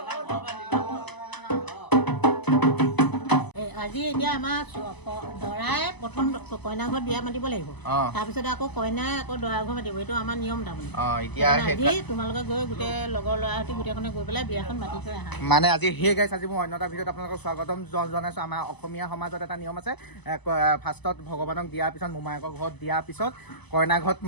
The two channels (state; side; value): late; right; 1.0 ms